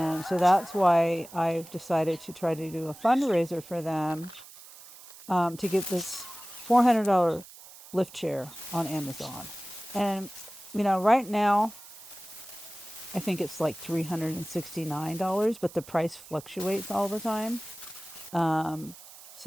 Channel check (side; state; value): right; noise; hiss, 19 dB below the sound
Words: so that's why I've decided to try to do a fundraiser for them to get this $400 lift chair on Amazon. And, right now, I think it's like $369, but the price fluctuates all the time.